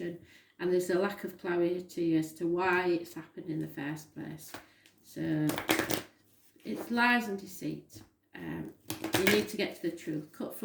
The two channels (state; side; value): identical; both; correlation 1.00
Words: and there's a lack of clarity as to why it's happened in the first place. So it's lies and deceit. You need to get to the truth, cut